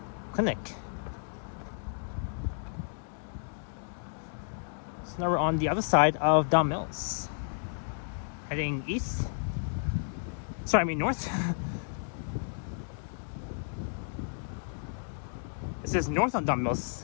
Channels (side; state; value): right; silent; digital silence